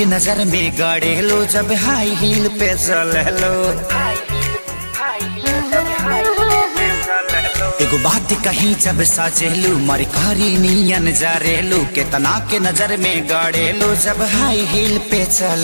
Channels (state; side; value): inverted; both; correlation -1.00